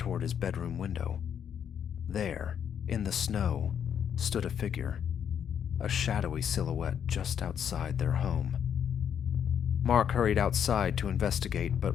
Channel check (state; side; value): quieter; right; 8.5 dB